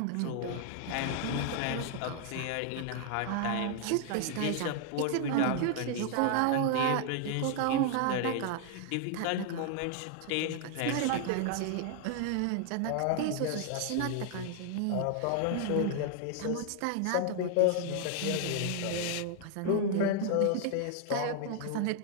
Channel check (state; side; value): different; both; correlation 0.00